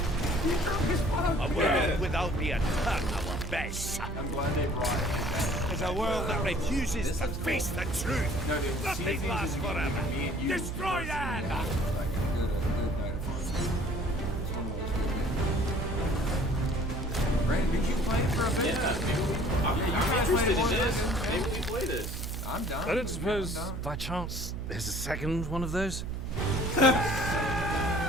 world without the attack, our best. I'm glad they brought it. Is a world that refuses to face the truth. No, dude, Nothing lasts forever. Destroy that! Brandon, did you play it for a bit? Yeah, I'm interested in this. Maybe we play this. I'm done. I don't suppose, by chance, there's a second one of those? Sound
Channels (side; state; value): right; noise; hum, 6 dB below the sound